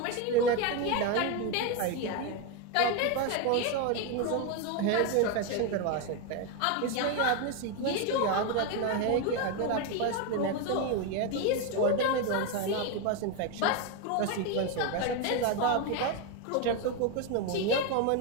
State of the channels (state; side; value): different; both; correlation 0.02